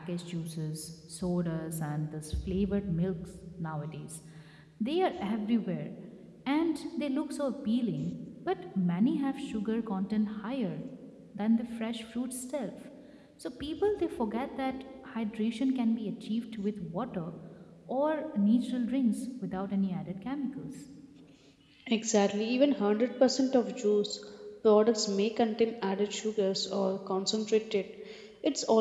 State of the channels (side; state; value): both; identical; correlation 1.00